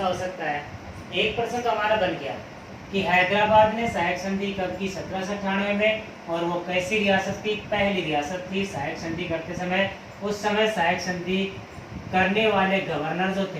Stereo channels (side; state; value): both; identical; correlation 1.00